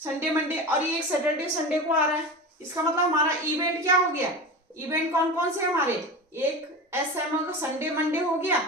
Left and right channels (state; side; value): normal; both; correlation 0.28